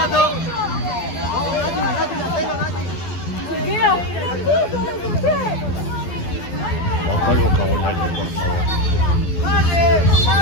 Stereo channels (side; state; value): right; late; 12 ms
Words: Bajo el vocabulario, por favor.